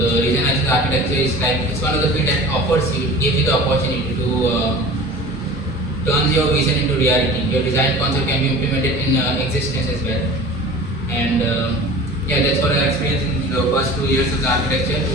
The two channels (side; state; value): both; normal; correlation 0.40